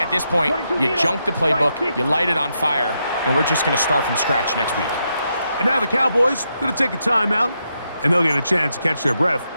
at this point, you junk the playbook, you light it on fire, and we're just going to start from scratch next week. And now the Cowboys going to take a timeout, and they'll get a chance to catch their breath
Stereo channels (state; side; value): inverted; both; correlation -0.82